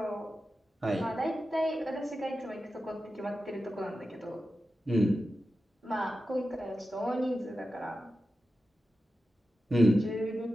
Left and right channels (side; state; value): both; normal; correlation 0.92